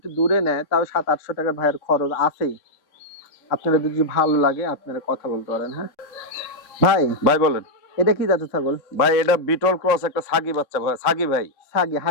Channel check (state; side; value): late; right; 3.5 ms